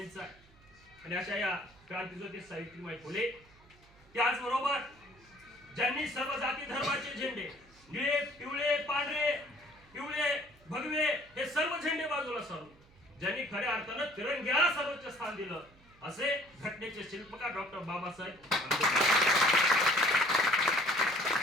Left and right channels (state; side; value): noise; right; hum, 27 dB below the sound